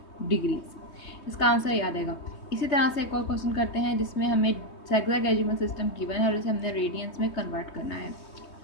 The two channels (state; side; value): late; right; 3.2 ms